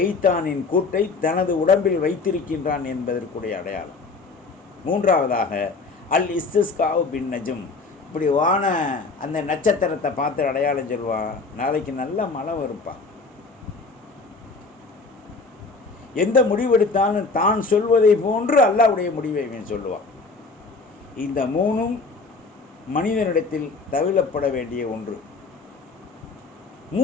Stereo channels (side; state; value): right; quieter; 4.0 dB